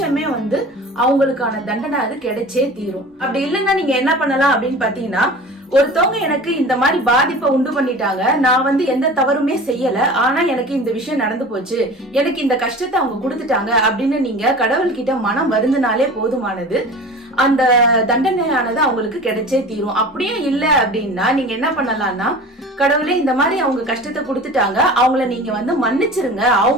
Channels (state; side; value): normal; both; correlation 0.38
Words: அவங்களுக்கான தண்டனை அது கிடைச்சே தீரும். அப்படி இல்லைன்னா நீங்க என்ன பண்ணலாம் அப்படின்னு பாத்தீங்கன்னா, ஒருத்தவங்க எனக்கு இந்த மாதிரி பாதிப்பை உண்டு பண்ணிட்டாங்க, நான் எந்த தவறுமே செய்யல, ஆனா எனக்கு இந்த விஷயம் நடந்து போச்சு, எனக்கு இந்த கஷ்டத்தை அவங்க கொடுத்துட்டாங்க அப்படின்னு நீங்க கடவுள்கிட்ட மனம் வருந்தினாலே போதுமானது. அந்த தண்டனையானது அவங்களுக்கு கிடைச்சே தீரும். அப்படியும் இல்ல அப்படின்னா நீங்க என்ன பண்ணலாம்னா, கடவுளே இந்த மாதிரி அவங்க கஷ்டத்தை கொடுத்துட்டாங்க, அவங்கள நீங்க மன்னிச்சிருங்க,